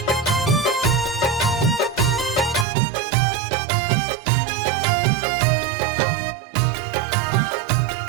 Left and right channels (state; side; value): drops out; left; at 2.7 s